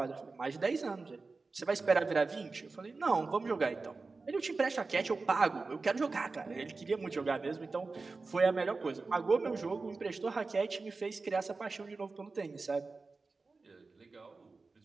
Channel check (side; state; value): left; quieter; 3.9 dB